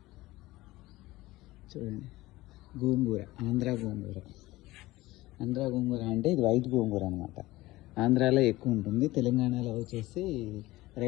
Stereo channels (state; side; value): quieter; right; 18.5 dB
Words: చూడండి, గోంగూర, ఆంధ్ర గోంగూర. ఆంధ్ర గోంగూర అంటే ఇది వైట్ గోంగూర అనమాట. ఆంధ్రాలో ఎక్కువ ఉంటుంది, తెలంగాణలో వచ్చేసి